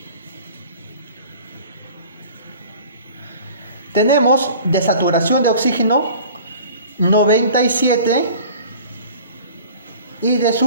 Tenemos de saturación de oxígeno 97 y de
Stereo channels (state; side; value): inverted; both; correlation -0.44